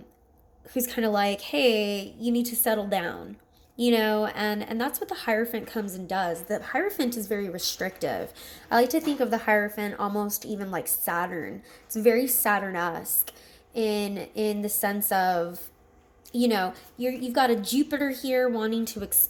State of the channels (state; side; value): identical; both; correlation 1.00